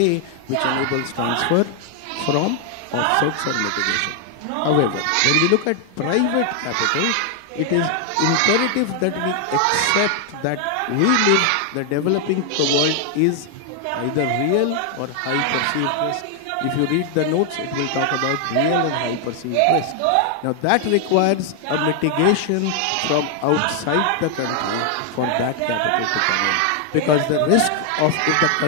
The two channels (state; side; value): different; both; correlation 0.00